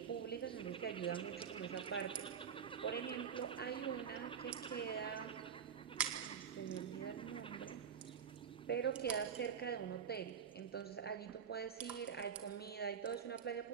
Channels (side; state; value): left; quieter; 7.6 dB